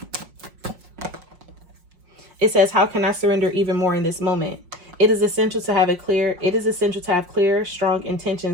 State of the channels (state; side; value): late; left; 5.6 ms